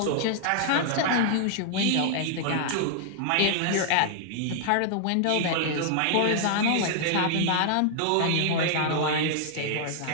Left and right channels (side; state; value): both; different; correlation 0.00